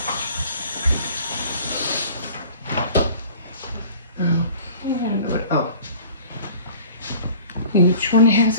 Each one has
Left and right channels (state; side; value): inverted; both; correlation -0.46